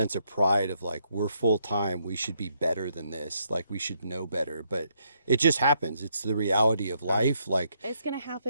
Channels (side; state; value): both; inverted; correlation -0.74